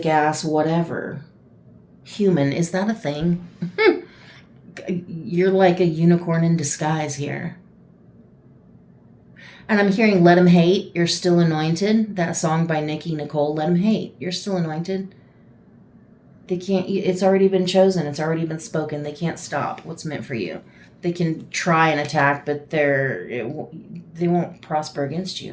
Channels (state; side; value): identical; both; correlation 1.00